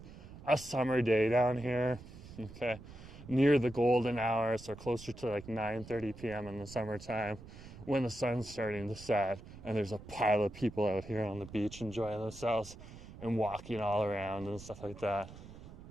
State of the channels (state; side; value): noise; right; rumble, 16 dB below the sound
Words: a summer day down here, okay, near the golden hour, so closer to like 9:30 p.m. in the summertime, when the sun's starting to set, and there's a pile of people out here on the beach enjoying themselves and walking all around and stuff like that.